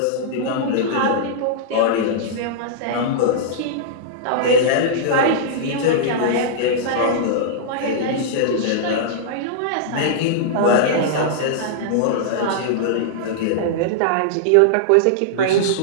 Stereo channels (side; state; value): both; different; correlation -0.02